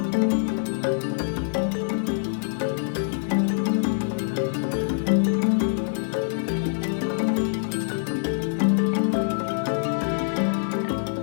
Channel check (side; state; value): right; silent; 62 dB below the other